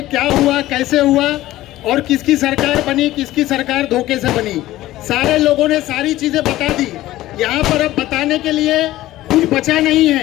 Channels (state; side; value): quieter; right; 15.8 dB